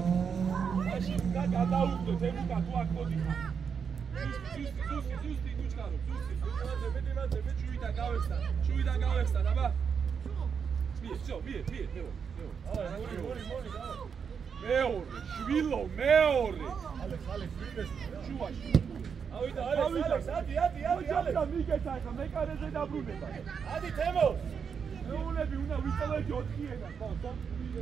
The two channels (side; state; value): left; quieter; 6.6 dB